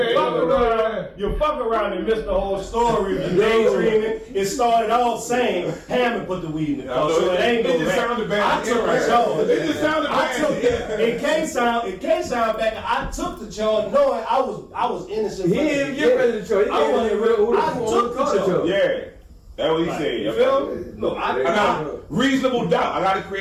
you fuck around and miss the whole story. You daydreaming. It started all saying Hammond put the weed in the car, so it ain't It no just rap. sounded bad. I took the charge. It just sounded I took bad. it can't sound back. I took the charge knowing I was innocent. He didn't even get ready to show. He I wasn't didn't real. who I took the charge. Yeah. That's what he Right. said. You feel me? No, I got reasonable doubt. I got to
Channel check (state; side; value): identical; both; correlation 1.00